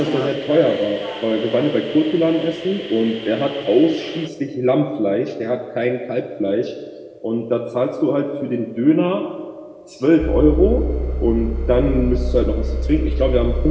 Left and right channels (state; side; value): identical; both; correlation 1.00